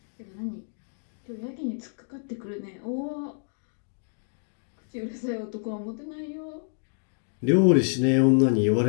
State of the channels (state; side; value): silent; right; digital silence